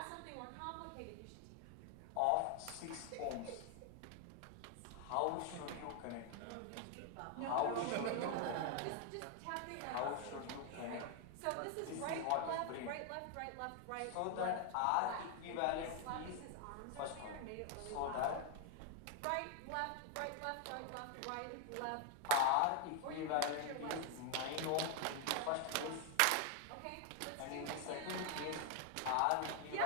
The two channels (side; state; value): both; different; correlation 0.00